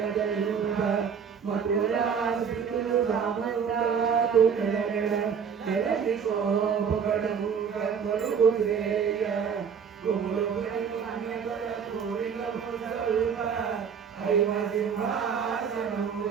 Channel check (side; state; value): left; quieter; 6.9 dB